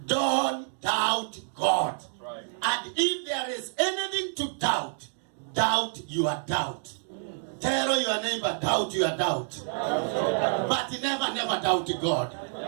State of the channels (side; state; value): left; silent; digital silence